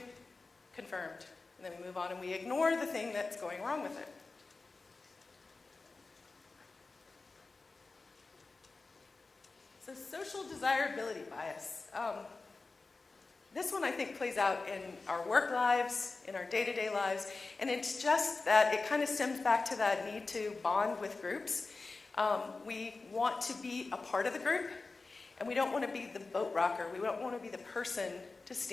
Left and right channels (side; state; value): right; quieter; 3.8 dB